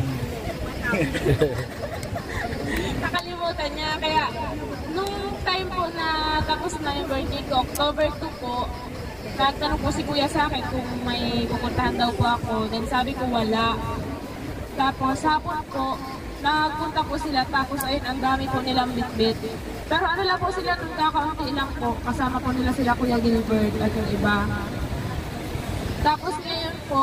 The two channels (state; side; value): identical; both; correlation 1.00